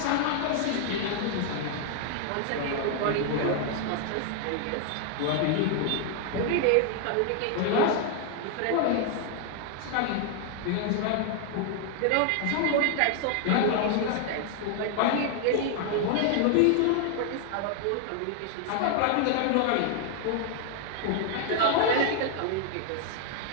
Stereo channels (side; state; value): both; different; correlation 0.00